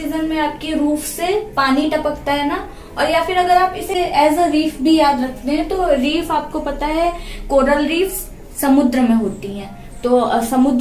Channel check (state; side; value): identical; both; correlation 1.00